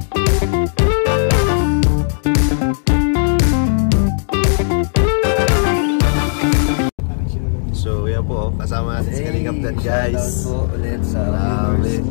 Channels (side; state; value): right; silent; 69 dB below the other